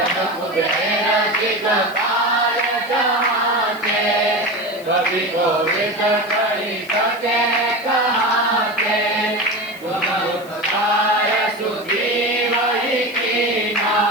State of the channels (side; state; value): left; noise; hiss, 22 dB below the sound